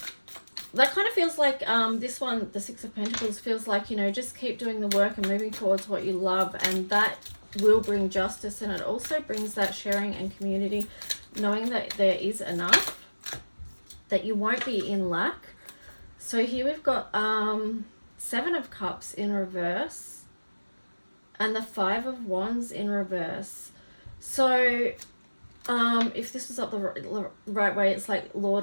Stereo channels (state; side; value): inverted; both; correlation -1.00